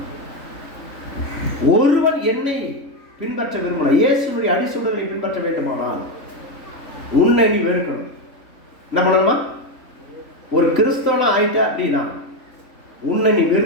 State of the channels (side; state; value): right; late; 3.5 ms